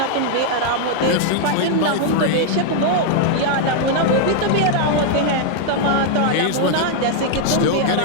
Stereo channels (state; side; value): different; both; correlation 0.00